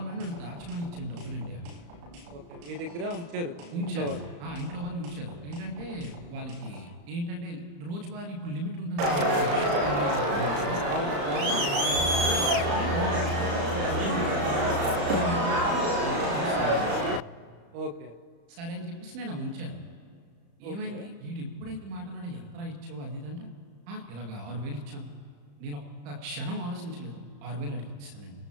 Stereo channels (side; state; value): left; late; 35 ms